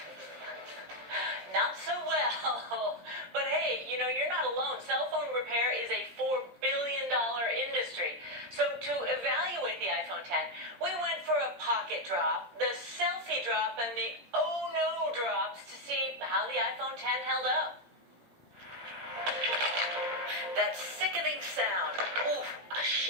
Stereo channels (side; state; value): left; late; 17 ms